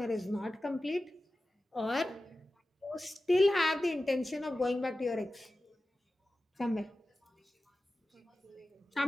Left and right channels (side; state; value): both; normal; correlation 0.94